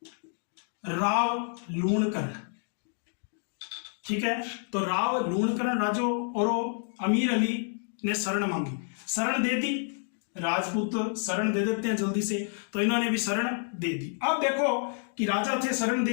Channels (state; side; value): silent; right; 59 dB below the other